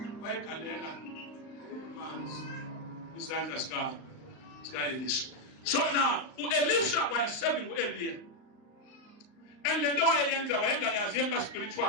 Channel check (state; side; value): late; right; 38 ms